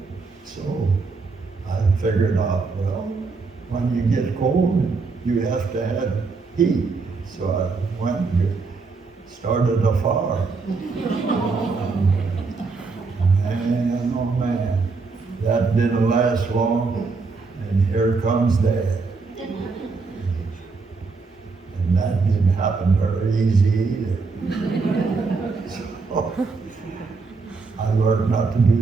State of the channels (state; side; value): quieter; left; 4.3 dB